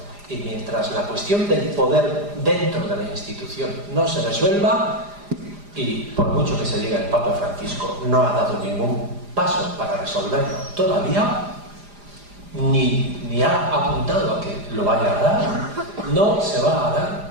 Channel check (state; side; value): late; left; 4.9 ms